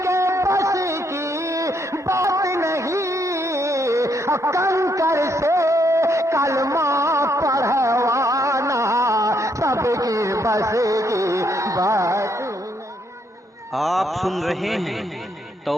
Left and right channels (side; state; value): both; normal; correlation 0.74